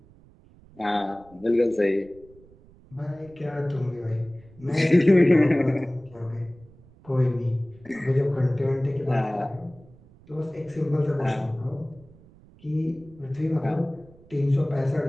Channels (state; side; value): noise; right; rumble, 25 dB below the sound